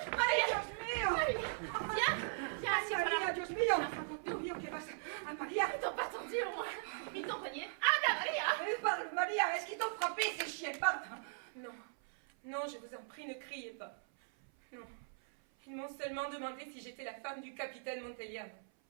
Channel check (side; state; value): left; silent; 52 dB below the other